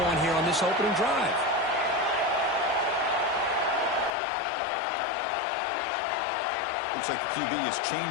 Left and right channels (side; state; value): right; drops out; at 4.1 s